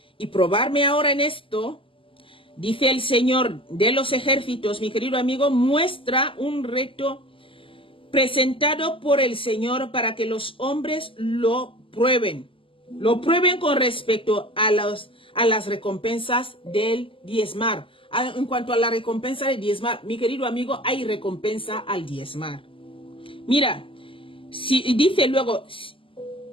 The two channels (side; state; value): right; late; 0.25 ms